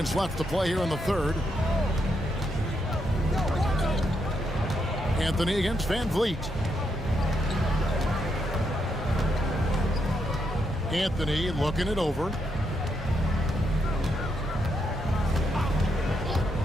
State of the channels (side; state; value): both; normal; correlation 0.80